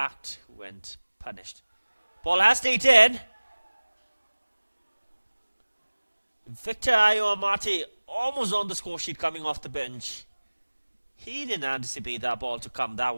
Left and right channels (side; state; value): both; inverted; correlation -1.00